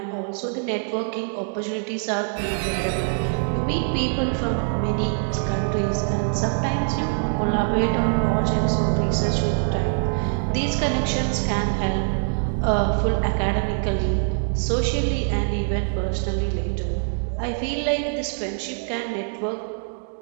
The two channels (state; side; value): silent; left; digital silence